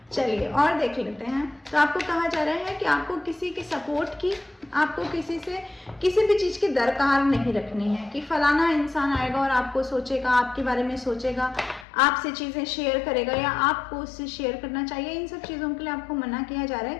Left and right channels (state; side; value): drops out; right; at 11.9 s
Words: चलिए और देख लेते हैं। तो आपको कहा जा रहा है कि आपको किसी के सपोर्ट की, आपको किसी से किसी भी चीज़ की दरकार नहीं रखनी है कि फलाना इंसान आएगा और आपको सोचेगा, आपके बारे में सोचेगा, आपसे चीज़ें शेयर करेगा या आपको उससे शेयर करना चाहिए। इन सब चीज़ों के लिए आपको मना किया जा रहा है,